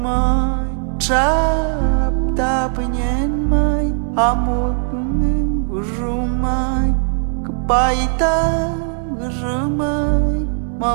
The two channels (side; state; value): left; silent; 56 dB below the other